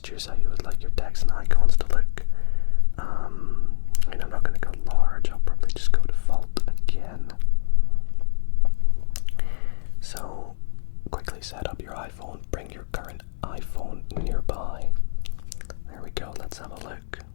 how you would like your text and icons to look. I'm not going to go large, I'll probably just go default again. So, quickly set up your iPhone, bring your current iPhone nearby. There we go, let's have a look.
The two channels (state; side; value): silent; right; 63 dB below the other